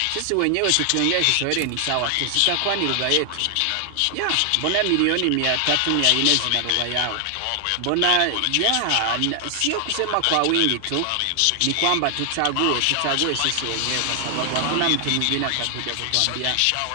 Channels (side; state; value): both; different; correlation 0.00